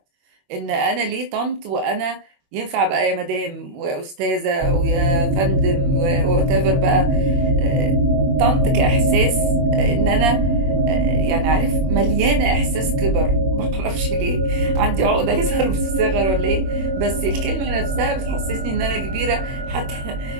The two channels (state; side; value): late; left; 21 ms